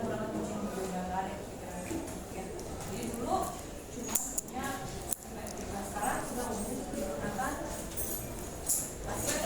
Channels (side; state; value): both; identical; correlation 1.00